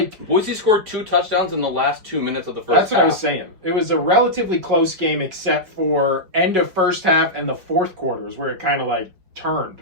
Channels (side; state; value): left; late; 5.4 ms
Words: Boise scored 2 touchdowns in the last 2 minutes of the first half. That's what I was saying. It was a relatively close game except for end of first half and the fourth quarters where it kind of like turned.